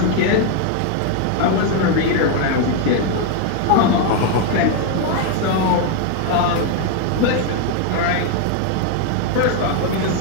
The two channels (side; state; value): both; different; correlation 0.01